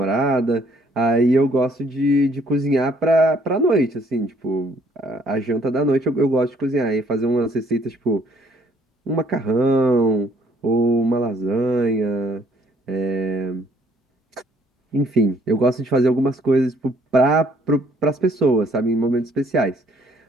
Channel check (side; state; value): both; normal; correlation 0.63